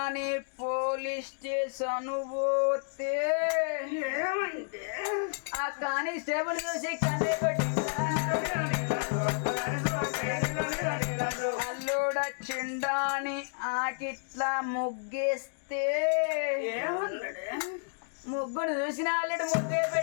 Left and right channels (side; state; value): right; silent; digital silence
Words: పోలీస్ స్టేషన్ పోతే ఏమైంది ఆ కానిస్టేబుల్ చూసి కన్నే పెట్టిండురా అల్లుడొచ్చిండాని ఆకిట్లా ముగ్గేస్తే ఏమన్నాడు ముగ్గుడు చూసిన అల్లుడు ముగ్గే